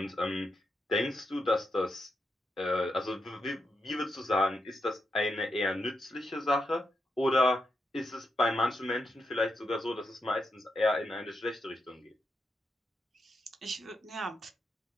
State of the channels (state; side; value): normal; both; correlation 0.85